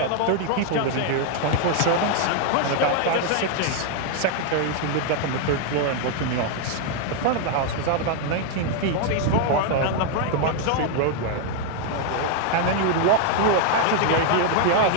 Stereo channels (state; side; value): different; both; correlation 0.00